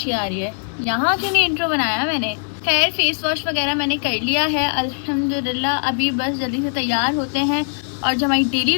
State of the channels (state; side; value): silent; right; digital silence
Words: आ रही है। यहाँ क्यों नहीं इंट्रो बनाया मैंने। खैर फेस वॉश वगैरह मैंने कर लिया है अल्हम्दुलिल्लाह। अभी बस जल्दी से तैयार होते हैं और जो हमारी डेली